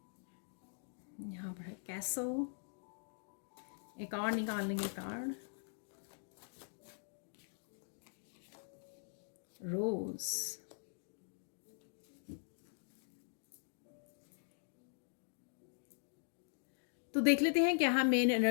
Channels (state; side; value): silent; right; digital silence